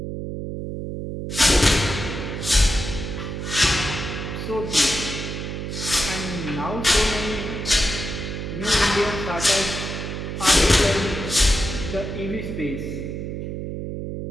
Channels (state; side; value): noise; right; hum, 5 dB below the sound